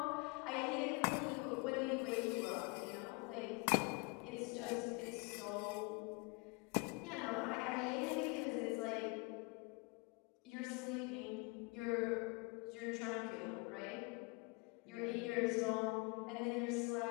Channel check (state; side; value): quieter; right; 29.0 dB